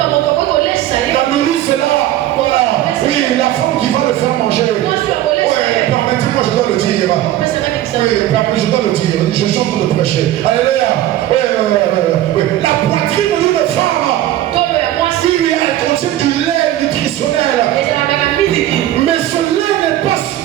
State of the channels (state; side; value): quieter; left; 13.5 dB